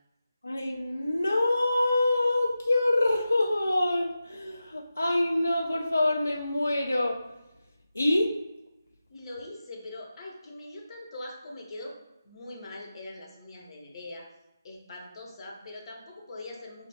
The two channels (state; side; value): inverted; both; correlation -0.92